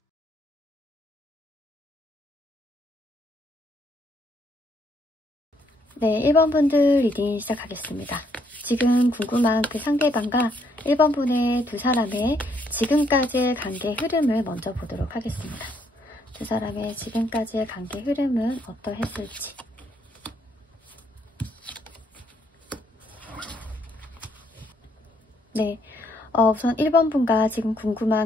네, 1번 분들 리딩 시작하겠습니다. 지금 궁금한 그 상대방과 1번 분의 두 사람의 지금까지의 관계 흐름을 먼저 보도록 하겠습니다. 두 사람의 지금까지의 관계 흐름은 어떠했을지. 네, 우선 1번 분과 지금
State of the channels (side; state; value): both; normal; correlation 0.71